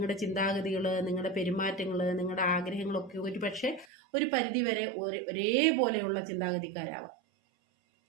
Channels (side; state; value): left; drops out; at 3.9 s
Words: ചിന്താഗതികൾ, നിങ്ങളുടെ പെരുമാറ്റങ്ങൾ, നിങ്ങളുടെ ആഗ്രഹങ്ങളൊക്കെ ഒരു പക്ഷേ ഒരു പരിധിവരെ ഒരേപോലെയുള്ള ചിന്താഗതിക്കാരാവാം.